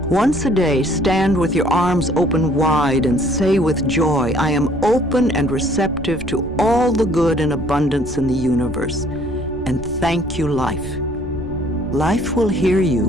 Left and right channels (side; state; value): right; noise; rumble, 14 dB below the sound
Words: Once a day, stand with your arms open wide and say with joy, I am open and receptive to all the good and abundance in the universe. And thank you, life. Life will hear